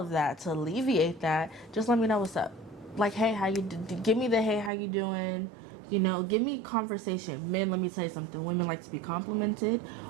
that, to alleviate that, just let me know what's up. Like, hey, how you give me the hey, how you doing? Give me conversation. Men, let me tell you something. Women like to be complimented.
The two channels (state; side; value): drops out; left; at 4.7 s